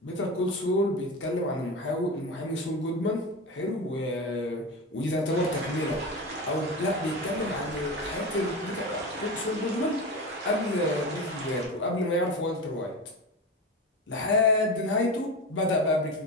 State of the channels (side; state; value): both; normal; correlation 0.24